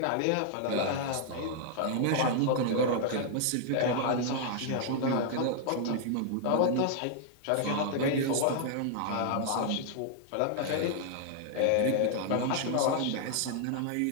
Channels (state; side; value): different; both; correlation -0.01